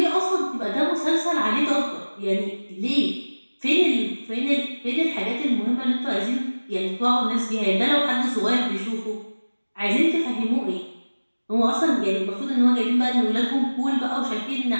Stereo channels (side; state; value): both; inverted; correlation -1.00